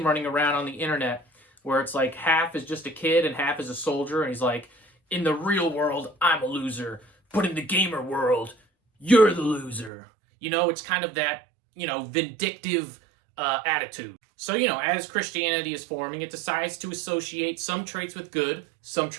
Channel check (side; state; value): left; drops out; at 9.9 s